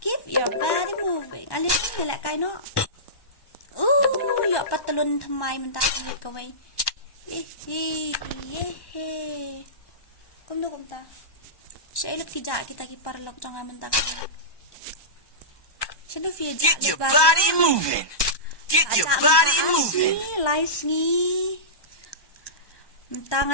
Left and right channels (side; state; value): right; late; 1.2 ms